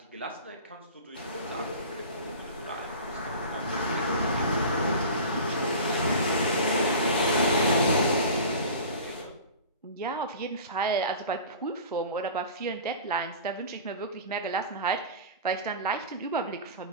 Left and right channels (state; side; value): inverted; both; correlation -0.37